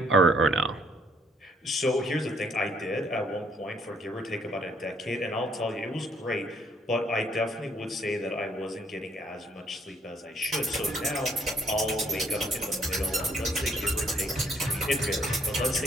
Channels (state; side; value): normal; both; correlation 0.66